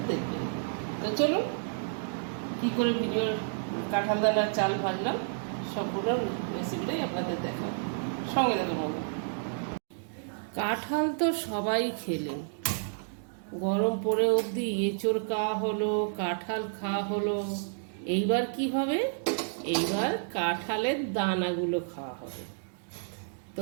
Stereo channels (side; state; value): left; silent; digital silence